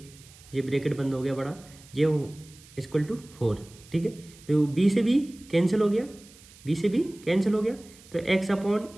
ये ब्रैकेट बंद हो गया बड़ा, ये इक्वल टू 4, ठीक है, तो b से b कैंसिल हो गया, b से b कैंसिल हो गया, तो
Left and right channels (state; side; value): noise; right; hiss, 23 dB below the sound